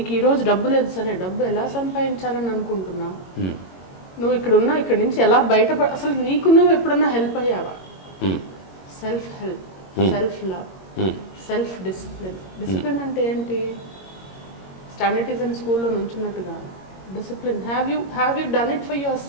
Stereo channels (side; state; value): right; late; 21 ms